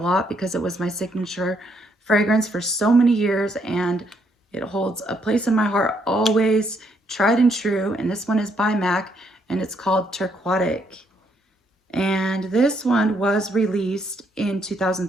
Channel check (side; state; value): both; normal; correlation 0.73